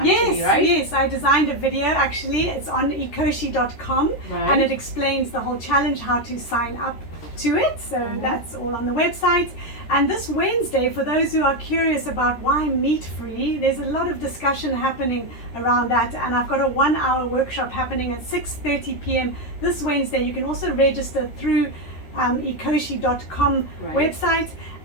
right? Yes, I designed a video actually. It's on ecoshe.com and it explains the whole challenge, how to sign up to it. So that's all on the website. And this Wednesday, for those who are curious about why meat-free, there's a lot of discussion happening around that. And I've got a 1-hour workshop happening at 6:30 p.m. this Wednesday. You can also register through ecoshe.com website.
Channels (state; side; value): late; right; 13 ms